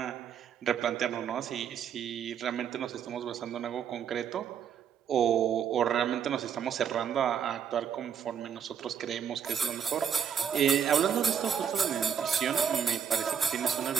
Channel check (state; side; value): quieter; left; 7.9 dB